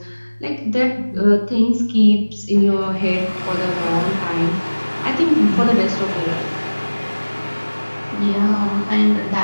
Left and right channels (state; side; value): inverted; both; correlation -1.00